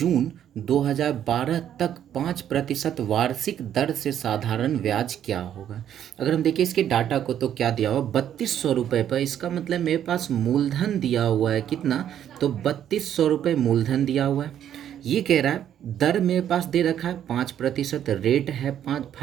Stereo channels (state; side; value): quieter; left; 10.2 dB